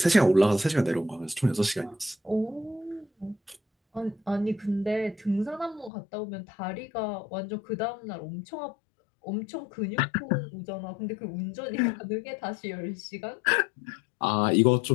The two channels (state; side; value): drops out; right; at 5.9 s